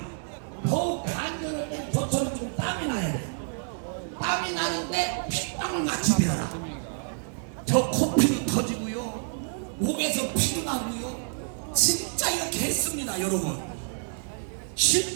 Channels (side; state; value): left; silent; digital silence